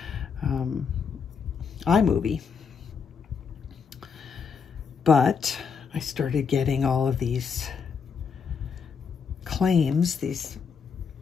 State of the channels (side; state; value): right; quieter; 6.2 dB